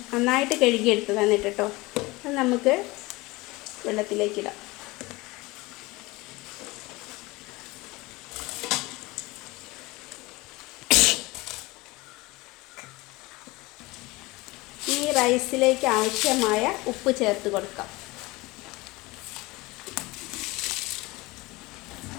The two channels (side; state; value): right; quieter; 22.2 dB